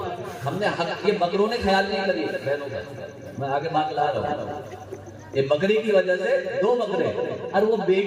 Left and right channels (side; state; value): both; identical; correlation 1.00